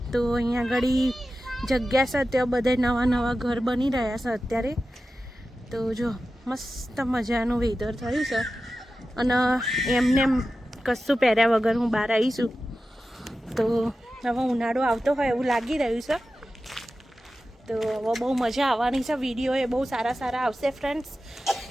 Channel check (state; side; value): normal; both; correlation 0.93